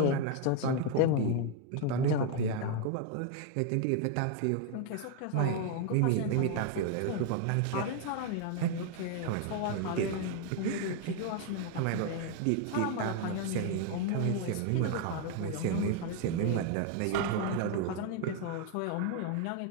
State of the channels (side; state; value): both; different; correlation 0.01